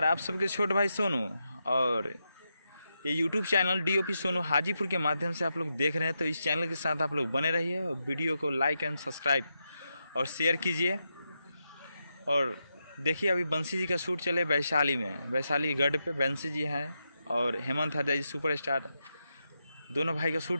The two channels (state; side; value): inverted; both; correlation -0.86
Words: आप सबके छोटे भाई सोनू और ये YouTube channel DOP Sonu Hajipur के माध्यम से आप लोग देख रहे हैं। तो इस चैनल के साथ आप लोग बने रहिए और वीडियो को लाइक एंड सब्सक्राइब और शेयर कीजिए। और देखिए अभी बंसी जी का शूट चले वैशाली में, वैशाली गढ़ पे बंसी जी हैं और हेमंत हरजाई जी सुपरस्टार, दोनों भाई का